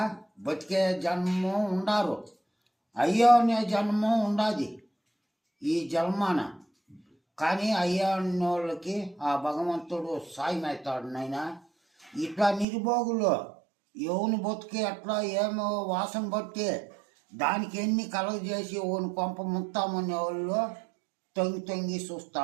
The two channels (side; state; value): left; drops out; at 12.7 s